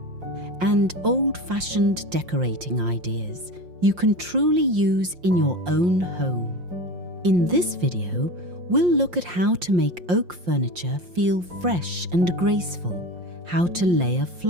and old-fashioned decorating ideas you can truly use in your own home. In this video, we'll look at how to make oak furniture feel fresh and graceful, how to layer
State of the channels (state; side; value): late; left; 5.7 ms